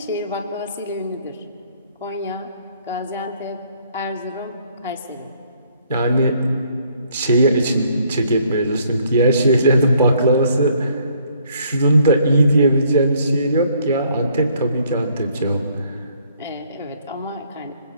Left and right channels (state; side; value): inverted; both; correlation -0.65